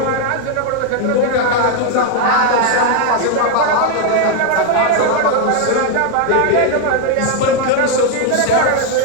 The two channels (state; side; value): different; both; correlation 0.01